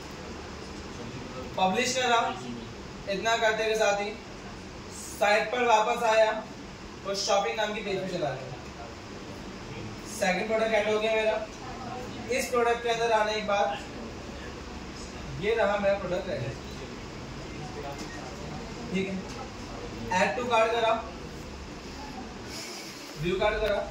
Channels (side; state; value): both; identical; correlation 1.00